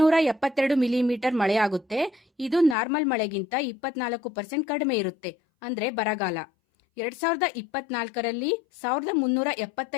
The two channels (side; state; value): right; drops out; at 2.8 s